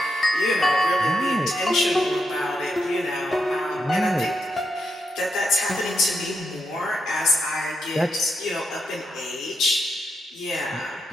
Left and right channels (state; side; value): normal; both; correlation 0.83